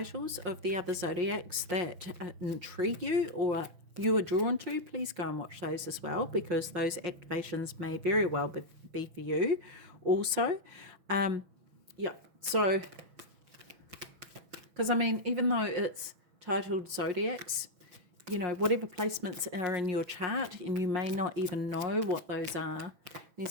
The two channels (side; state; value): left; late; 6.0 ms